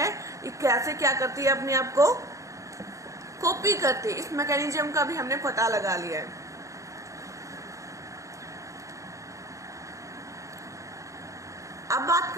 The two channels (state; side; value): late; left; 0.15 ms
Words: ये कैसे क्या करती है, अपने आप को कॉपी करती है। इस मैकेनिज्म का भी हमने पता लगा लिया है। अब बात